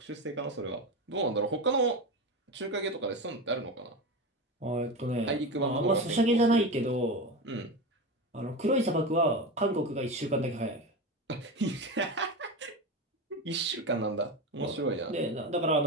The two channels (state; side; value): normal; both; correlation 0.21